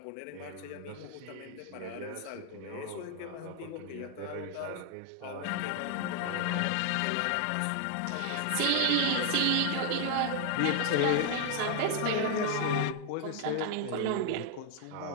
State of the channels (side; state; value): both; different; correlation 0.00